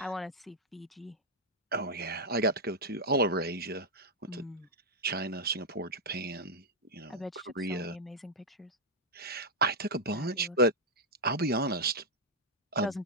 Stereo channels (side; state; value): both; normal; correlation -0.03